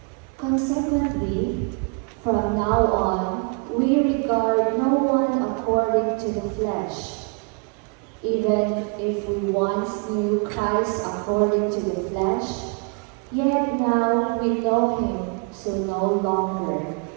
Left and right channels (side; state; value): left; quieter; 35.5 dB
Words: Consequently, from now on, we regard no one according to the flesh. Even if we once knew Christ according to the flesh, yet now we know him so no longer.